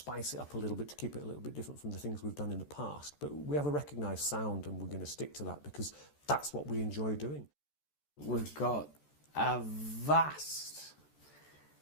it up a little bit, to keep it a little bit different from the things we've done in the past. But we have a recognised sound, and we're going to stick to that because that's what we enjoy doing. We've got a vast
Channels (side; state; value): right; late; 14 ms